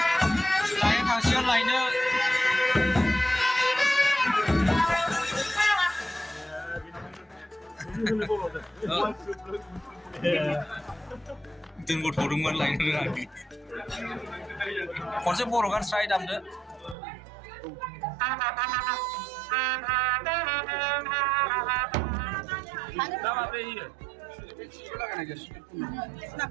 등고 도둑만 라인을 하기 언제 보러 간 스라이 담드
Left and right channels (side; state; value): left; drops out; at 16.9 s